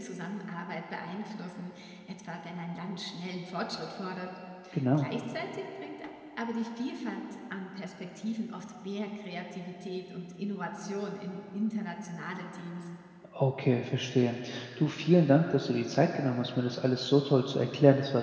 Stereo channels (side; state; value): both; identical; correlation 1.00